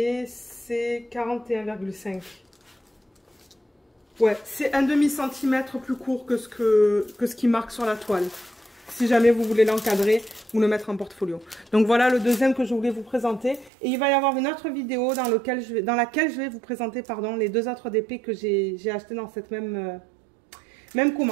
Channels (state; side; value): drops out; left; at 13.7 s